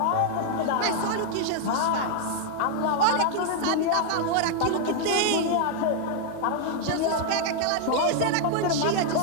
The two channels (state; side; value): different; both; correlation 0.00